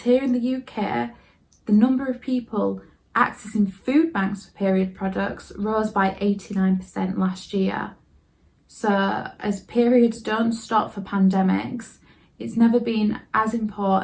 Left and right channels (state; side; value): identical; both; correlation 1.00